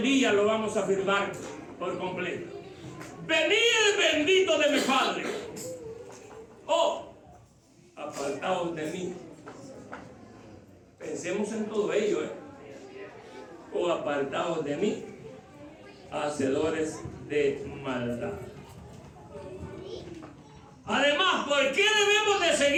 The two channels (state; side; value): identical; both; correlation 1.00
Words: día lo vamos a afirmar por completo. Venid bendito de mi Padre. Oh, apartaos de mí. Pensemos en todo ello, o apartados de mí, hacedores de maldad. Además, ¿por qué debemos de